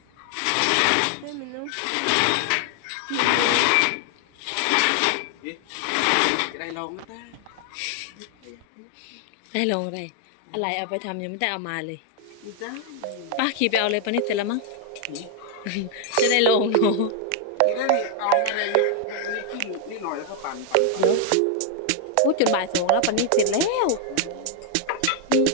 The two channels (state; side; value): different; both; correlation 0.00